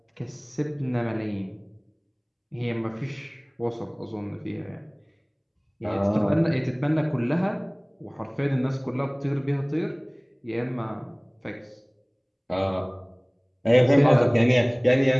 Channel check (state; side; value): identical; both; correlation 1.00